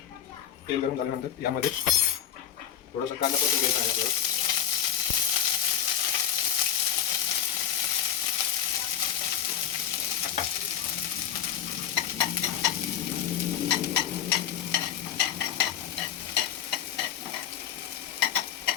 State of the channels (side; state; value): right; quieter; 9.6 dB